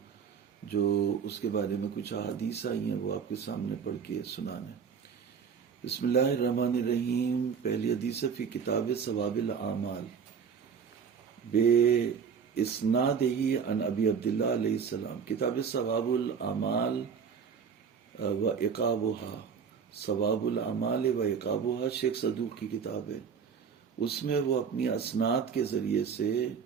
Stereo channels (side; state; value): left; quieter; 6.6 dB